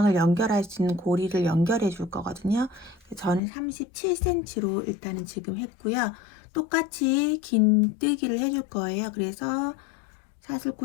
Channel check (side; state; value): right; drops out; at 3.4 s